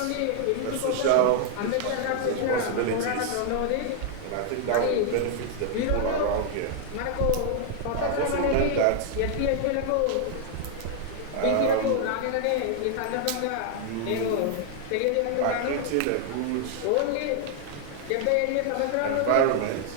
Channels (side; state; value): both; different; correlation -0.01